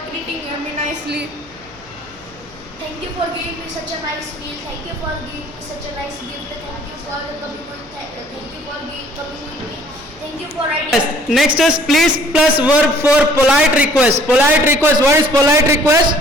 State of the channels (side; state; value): left; noise; hum, 26 dB below the sound